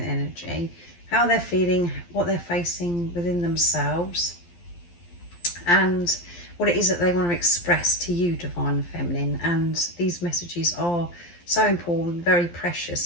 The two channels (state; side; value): late; right; 12 ms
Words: energy, how they're feeling, what they're facing within themselves, and what it is that they want to express to you, Divine Feminine. And these messages are so important, very